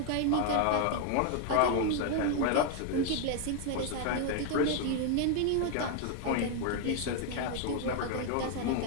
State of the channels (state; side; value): different; both; correlation 0.00